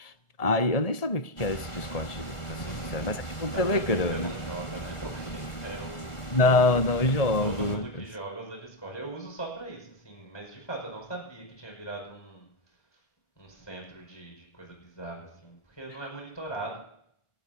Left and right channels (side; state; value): right; late; 1.4 ms